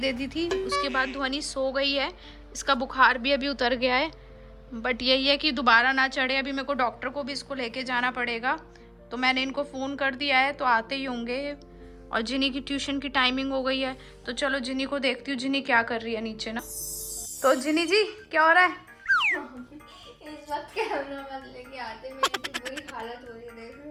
दी थी, उसके बाद ध्वनि सो गई है, इसका बुखार भी अभी उतर गया है, बट यही है कि दोबारा ना चढ़े। अभी मेरे को डॉक्टर को भी इसको लेके जाना पड़ेगा, तो मैंने इनको फ़ोन कर दिया है, तो आते ही होंगे। और जिनी की ट्यूशन की टाइमिंग हो गई है, तो चलो जिनी को देखती हूँ जिनी क्या कर रही है नीचे ना। तो जिनी जी क्या हो रहा है? इस वक्त कैमरा मत लेके आते, मेरी तो बुरी हालत हो रही है, देख रहे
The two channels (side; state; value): both; identical; correlation 1.00